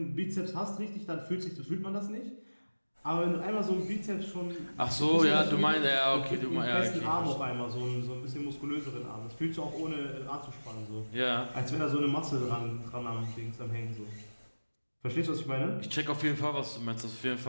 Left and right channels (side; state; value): both; inverted; correlation -1.00